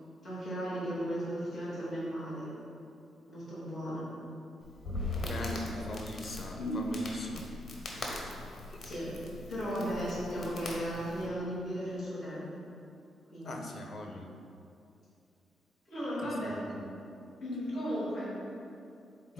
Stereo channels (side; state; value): both; normal; correlation 0.75